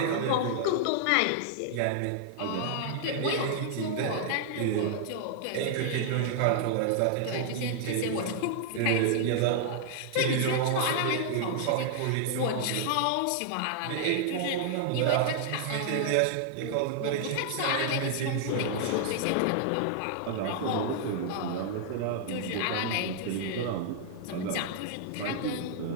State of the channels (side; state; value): both; different; correlation -0.01